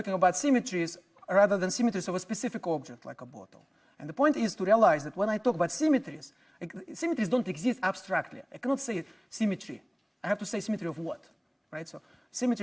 about symmetries rather than symmetries of a specific object like a bottle. And the point is to realize that when I talk about symmetries, symmetries don't exist abstractly. I cannot say symmetry. I have to say symmetry of what, right? So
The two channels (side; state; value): both; identical; correlation 1.00